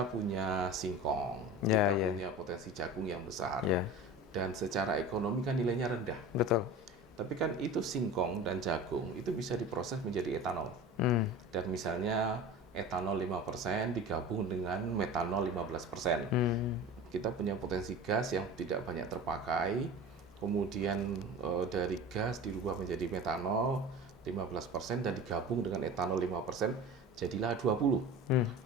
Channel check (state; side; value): normal; both; correlation 0.35